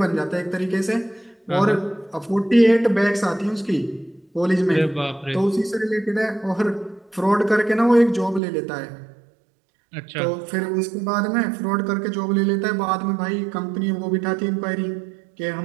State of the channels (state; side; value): drops out; left; at 8.4 s